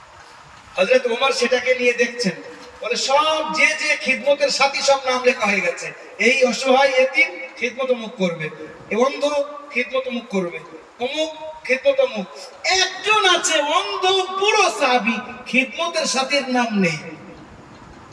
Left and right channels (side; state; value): both; identical; correlation 1.00